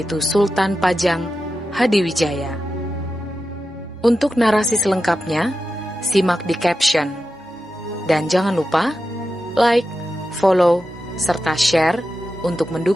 Sultan Pajang Hadiwijaya. Untuk narasi selengkapnya, simak di caption. Dan jangan lupa like, follow, serta share untuk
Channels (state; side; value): normal; both; correlation 0.91